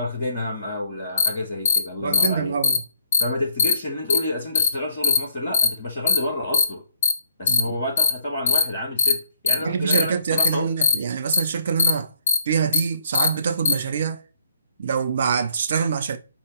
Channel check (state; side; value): inverted; both; correlation -0.69